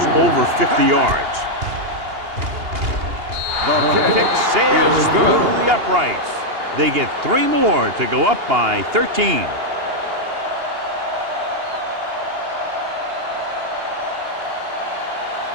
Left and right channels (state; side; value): late; left; 2.8 ms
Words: over 50 yards. The Kick sails through the uprights. They get 3 more to go up by 13.